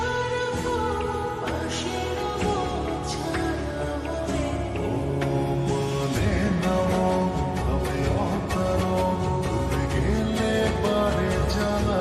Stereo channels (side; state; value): both; identical; correlation 1.00